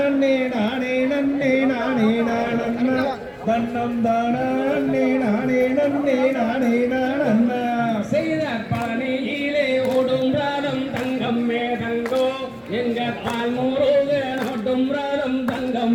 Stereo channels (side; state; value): both; identical; correlation 1.00